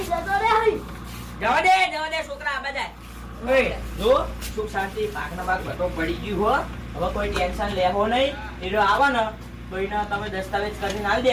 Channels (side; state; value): both; identical; correlation 1.00